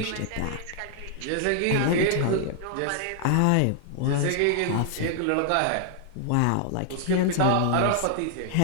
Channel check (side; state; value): both; different; correlation -0.01